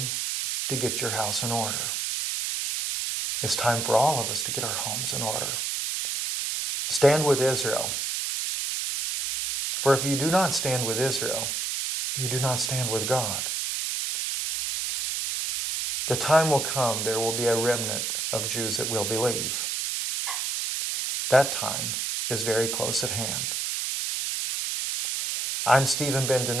to get your house in order. It's time for all of us to get our homes in order. Stand with Israel. For if you do not stand with Israel, you do not stand with God. The time will come, there will be a remnant of Jews that will believe. That time is very close at hand. I'm Stephen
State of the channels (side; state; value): right; noise; hiss, 1 dB below the sound